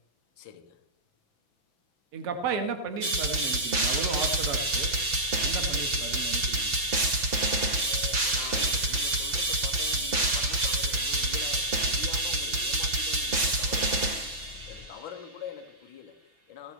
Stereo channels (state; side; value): late; left; 6.0 ms